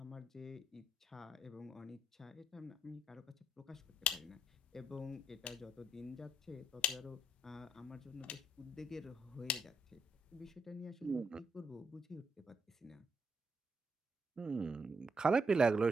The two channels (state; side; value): normal; both; correlation 0.77